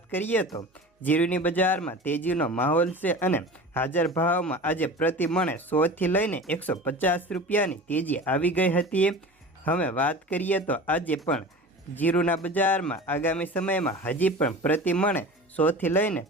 કરીએ તો જીરુની બજારમાં તેજીનો માહોલ છે અને હાજર ભાવમાં આજે પ્રતિ મણે 100 થી લઈને 150 રૂપિયાની તેજી આવી ગઈ હતી। હવે વાત કરીએ તો આજે પણ જીરુના બજારમાં આગામી સમયમાં હજી પણ પ્રતિ મણે 100 થી લઈને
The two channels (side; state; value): both; normal; correlation 0.35